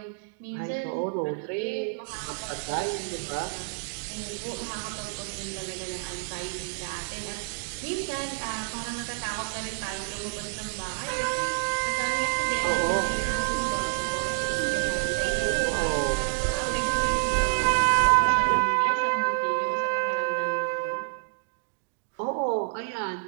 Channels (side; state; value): left; silent; digital silence